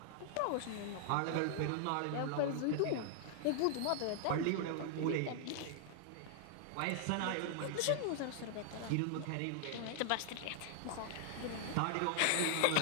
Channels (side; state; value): both; different; correlation 0.00